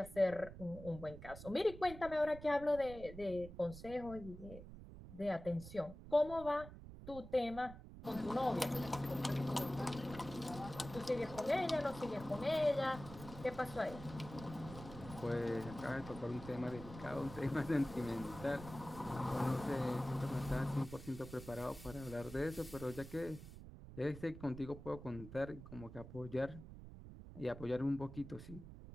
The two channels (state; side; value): noise; right; rumble, 13 dB below the sound